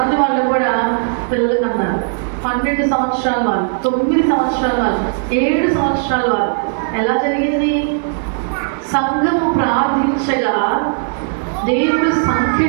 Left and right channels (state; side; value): silent; left; 61 dB below the other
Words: వాళ్ళు కూడా పిల్లలు కన్నారు. 12 సంవత్సరాల వాళ్ళు, 9 సంవత్సరాల వాళ్ళు, 7 సంవత్సరాల వాళ్ళు. ఎలా జరిగింది? సంఘము ప్రార్థించగా దేవుడు